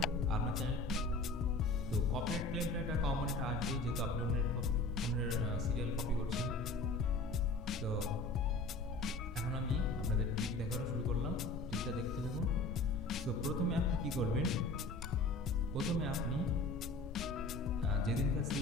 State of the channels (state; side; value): quieter; right; 3.2 dB